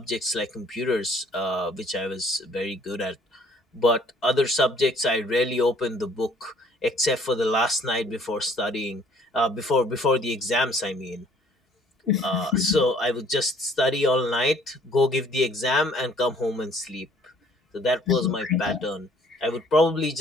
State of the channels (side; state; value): both; normal; correlation 0.58